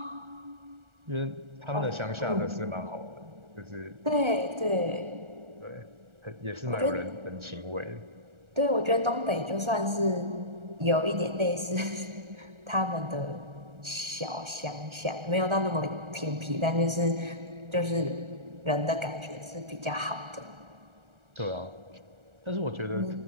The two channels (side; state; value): left; late; 1.4 ms